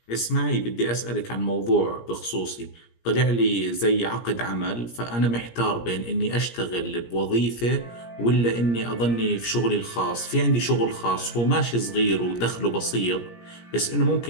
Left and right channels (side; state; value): right; late; 17 ms